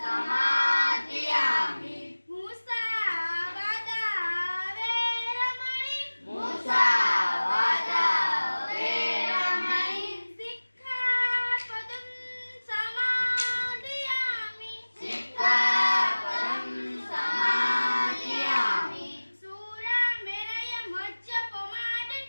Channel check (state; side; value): inverted; both; correlation -1.00